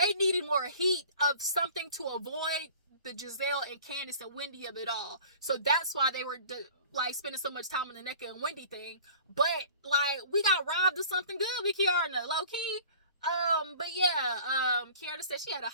needed more heat of something to avoid the Gizelle and Candace and Wendy of it all. So that's why they were spending so much time on the Nneka and Wendy thing. But we got robbed of something good with Kiara, low key. But yeah, Kiara said she had a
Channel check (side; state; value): both; inverted; correlation -0.45